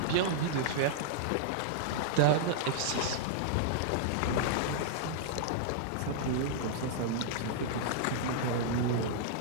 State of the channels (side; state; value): both; different; correlation -0.02